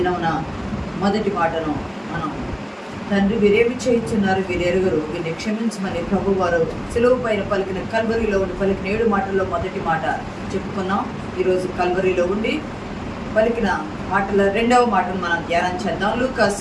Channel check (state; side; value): identical; both; correlation 1.00